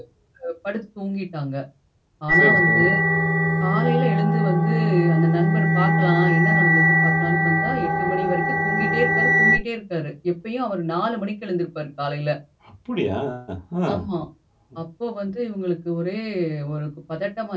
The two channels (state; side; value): identical; both; correlation 1.00